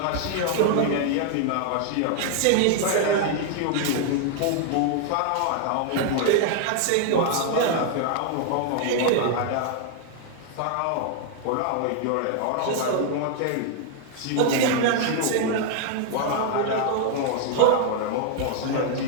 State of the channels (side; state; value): both; different; correlation 0.00